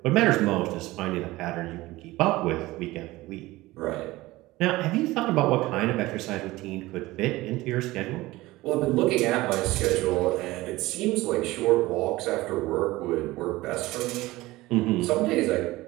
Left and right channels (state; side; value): quieter; left; 18.9 dB